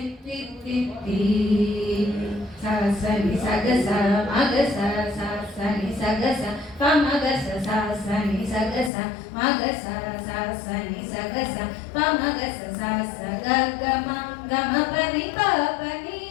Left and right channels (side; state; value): right; drops out; at 8.9 s